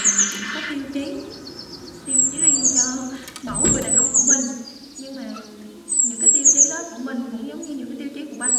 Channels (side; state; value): both; identical; correlation 1.00